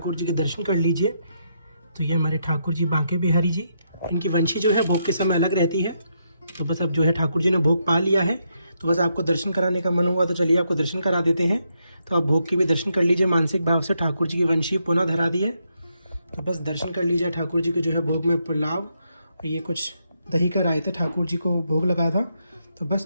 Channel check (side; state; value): both; inverted; correlation -0.79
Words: जी के दर्शन कर लीजिए। तो ये हमारे ठाकुर जी बांके बिहारी जी, इनकी वंशी जो है भोग के समय अलग रहती है। तो बस अब जो है ठाकुर जी ने भोग पा लिया है, तो बस आपको दर्शन कराने का मन हुआ तो चलिए आपको दर्शन करा देते हैं। तो आप भोग के भी दर्शन कर लीजिए मानसिक भाव से। ठाकुर जी की वंशी पुनः धरा दी है, तो बस दर्शन कर लीजिए ठाकुर जी के जो है भोग में पुलाव और ये कुछ दही का रायता ठाकुर जी को भोग लगाया था। तो